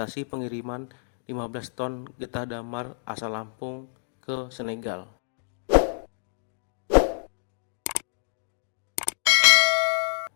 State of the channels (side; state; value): right; silent; digital silence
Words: pengiriman 15 ton getah damar asal Lampung ke Senegal.